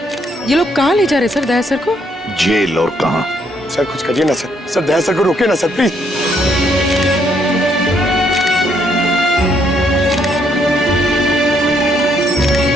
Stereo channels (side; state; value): both; normal; correlation 0.71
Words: लोग कहाँ ले जा रहे सर दया सर को? जेल। और कहाँ? सर कुछ करिए ना सर, सर दया सर को रोके ना सर प्लीज।